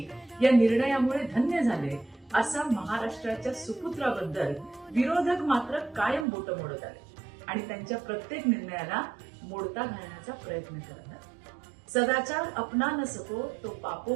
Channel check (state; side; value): drops out; left; at 6.2 s